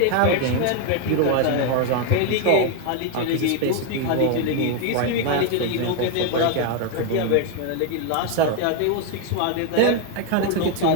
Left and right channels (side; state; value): both; different; correlation 0.01